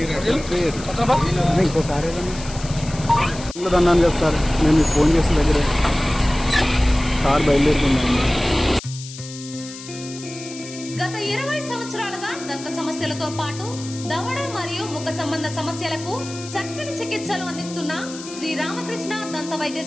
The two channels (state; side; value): noise; left; hiss, 14 dB below the sound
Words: ఇంకో కారు అన్నాను కదా సార్ నేను మీకు ఫోన్ చేసిన దగ్గరే కారు బయలుదేరుతున్నాను. గత 20 సంవత్సరాలుగా దంత సమస్యలతో పాటు దవడ మరియు ముఖ సంబంధ సమస్యలకు చక్కని చికిత్సలు అందిస్తున్న శ్రీ రామకృష్ణ దంత